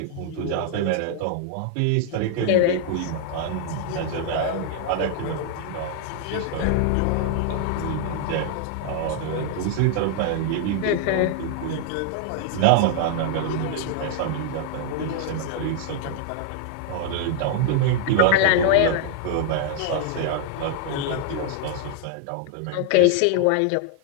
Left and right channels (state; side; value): different; both; correlation -0.01